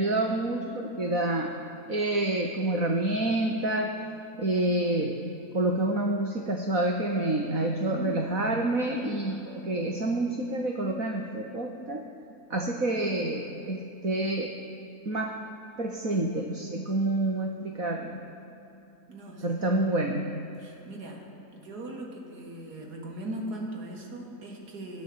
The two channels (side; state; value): left; late; 4.1 ms